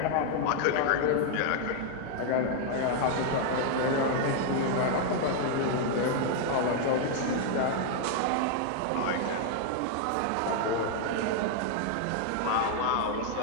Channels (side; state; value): both; different; correlation 0.00